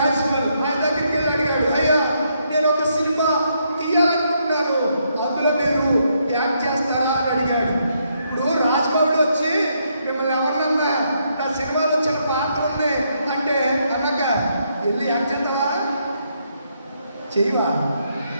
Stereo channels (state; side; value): inverted; both; correlation -0.76